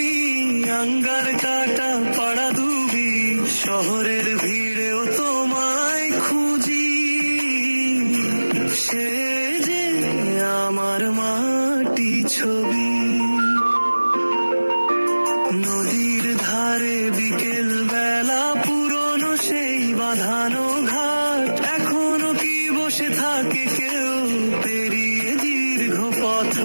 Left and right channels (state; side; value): inverted; both; correlation -1.00